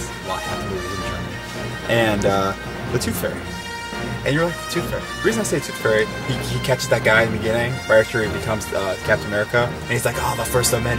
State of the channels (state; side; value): identical; both; correlation 1.00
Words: a lot half the movies in Germany. And the Tooth Fairy. And you're like, the Tooth Fairy. The reason I say Tooth Fairy, he catches that guy in the beginning, right after he becomes Captain America, and he's like, oh, the first of